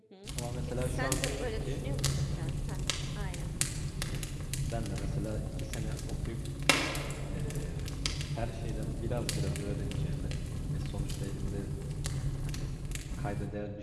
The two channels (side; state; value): both; identical; correlation 1.00